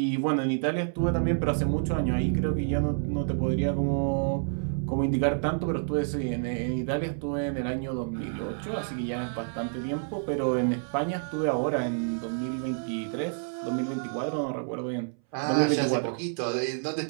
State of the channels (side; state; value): left; silent; 59 dB below the other